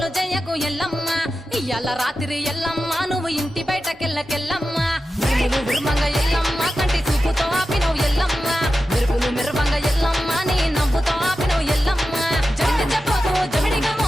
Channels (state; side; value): normal; both; correlation 0.92